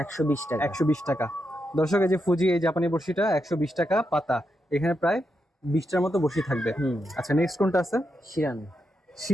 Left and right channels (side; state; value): both; normal; correlation 0.84